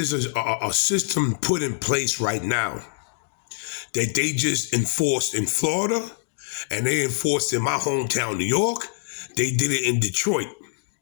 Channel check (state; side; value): silent; right; digital silence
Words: a system put in place right now that they just enforced in Florida and they enforced in my hometown, New York. They did it in Detroit,